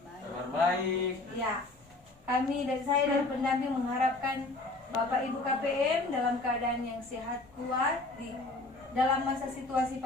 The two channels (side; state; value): right; quieter; 3.1 dB